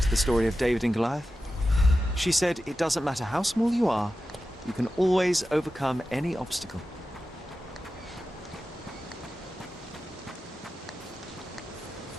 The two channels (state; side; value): normal; both; correlation 0.93